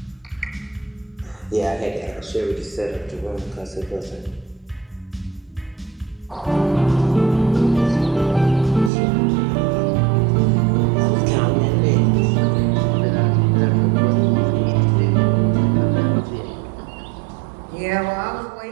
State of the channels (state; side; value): drops out; left; at 8.9 s